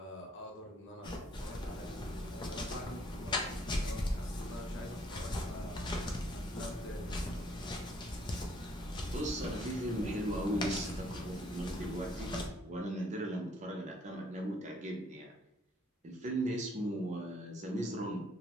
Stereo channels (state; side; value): normal; both; correlation 0.66